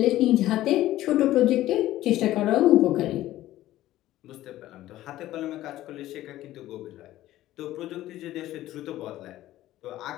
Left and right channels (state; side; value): quieter; right; 14.8 dB